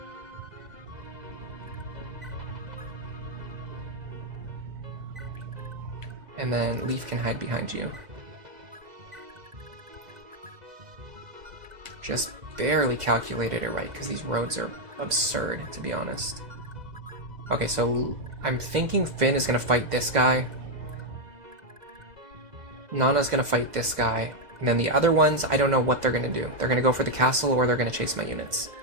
And then Leaf can hide behind you. Just barely calculated it right, because these roads are absurd, to be honest. Okay, so I'm thinking Finn is going to fight this guy. Nana's going to fight this guy. And then the other ones, I don't know what they're going to do. They're going to go for the castle, or they're going to chase my units.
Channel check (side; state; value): left; late; 2.1 ms